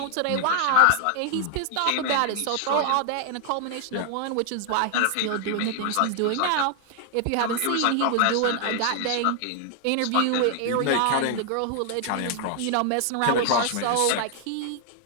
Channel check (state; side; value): different; both; correlation 0.00